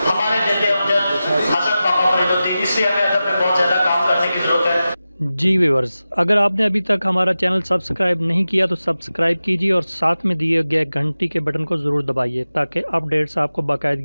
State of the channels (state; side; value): inverted; both; correlation -0.94